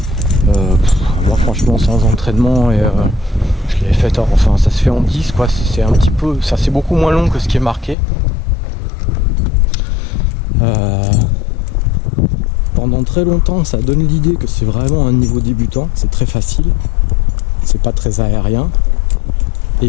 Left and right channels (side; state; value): right; drops out; at 8.0 s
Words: Moi franchement sans entraînement et je l'ai fait, enfin ça se fait en 10 quoi, c'est un petit peu, ça c'est beaucoup moins long que ce qui est marqué. Pendant très longtemps ça donne l'idée que c'est vraiment un niveau débutant, c'est très facile, c'est pas très aérien.